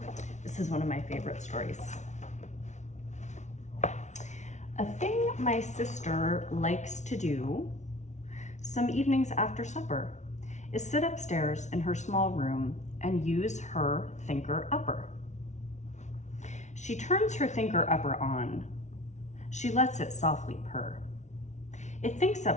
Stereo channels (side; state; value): right; late; 0.34 ms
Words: This is one of my favorite stories. A thing my sister likes to do some evenings after supper is sit upstairs in her small room and use her thinker upper. She turns her thinker upper on. She lets it softly purr. It thinks